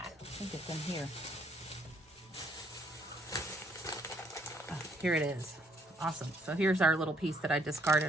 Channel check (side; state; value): both; normal; correlation 0.67